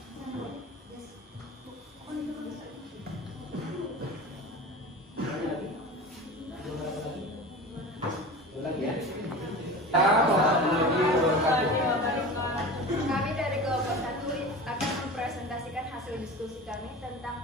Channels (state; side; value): normal; both; correlation 0.33